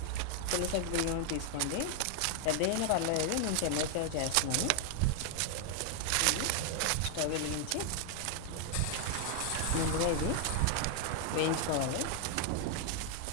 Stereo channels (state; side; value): different; both; correlation 0.00